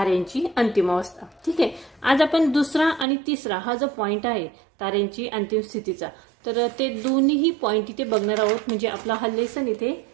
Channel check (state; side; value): drops out; left; at 3.1 s